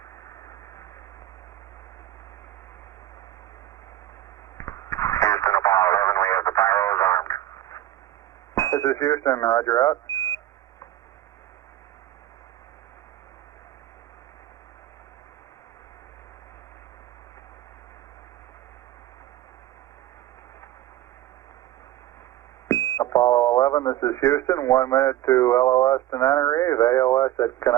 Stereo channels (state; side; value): quieter; left; 13.6 dB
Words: Houston, Apollo 11, we have the pyros armed. This is Houston, roger out. Apollo 11, this is Houston, 1 minute to LOS Tenerife, AOS at